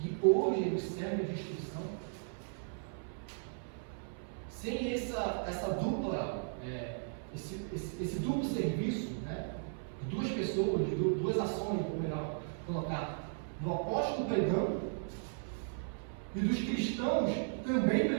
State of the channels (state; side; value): silent; left; 54 dB below the other